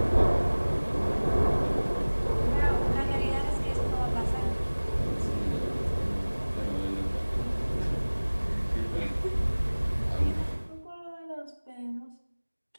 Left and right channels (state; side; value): inverted; both; correlation -1.00